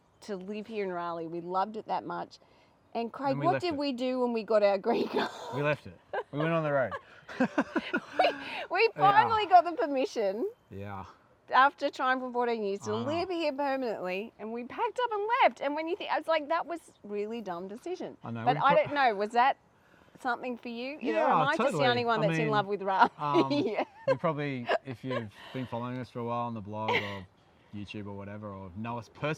to live here in Raleigh. We loved it that much. And Craig, what did we do when we got our green card? We left it. We went on the road. we finally got the permission. Yeah. After trying for 14 years to live here permanently, and we packed up and left. And when you think, I was like, that was really dumb decision. I know. But I don't know, was that something for you? You know, am I totally. just the only one that's in love with Raleigh? Yeah. We probably, if you've been following us for a while on the blog or YouTube or whatever, or know us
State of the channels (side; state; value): both; identical; correlation 1.00